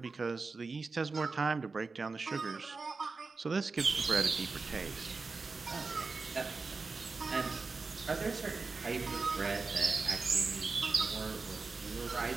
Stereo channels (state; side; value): quieter; left; 4.2 dB